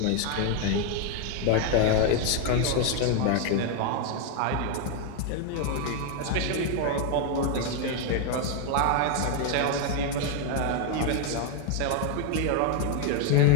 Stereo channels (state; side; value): different; both; correlation 0.00